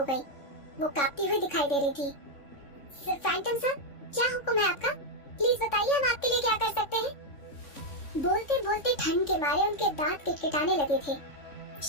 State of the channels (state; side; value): late; right; 3.6 ms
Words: गई। वो कांपती हुई दिखाई दे रही थी। फैंटम सर, क्या हुक्म है आपका? प्लीज बताइए, हम आपके लिए क्या कर सकते हैं? बोलते बोलते ठंड के मारे उनके दांत किटकिटाने लगे थे।